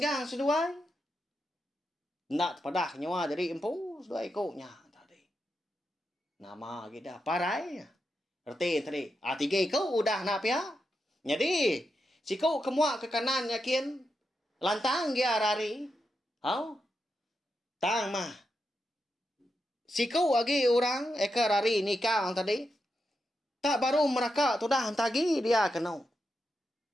seduai. Nak padah nyawa dari empu dua ikutnya tadi. Nama kita parai. Erti tadi. Tiga ikut udah nak pia. Jadi siku kemua ke kanan yakin lantang dia rari. Hau. Tang mah. Siku lagi orang eka rari nikah tadi. Tak baru mereka tu dah tagi dia kena.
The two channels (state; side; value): normal; both; correlation 0.86